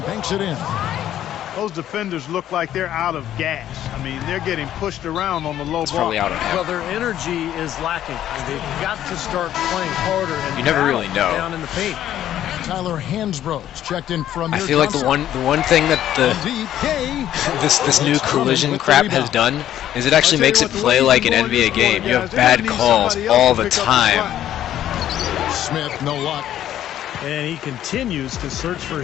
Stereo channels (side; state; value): right; quieter; 11.7 dB